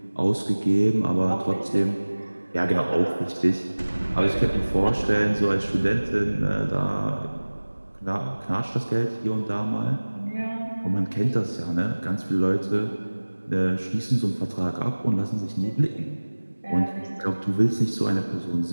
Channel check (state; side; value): inverted; both; correlation -1.00